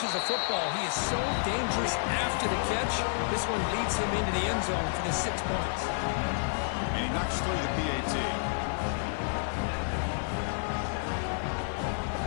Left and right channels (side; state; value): right; silent; 55 dB below the other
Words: a football, he is so dangerous after the catch. This one leads him into the end zone for the 6 points. And he knocks through the PAT.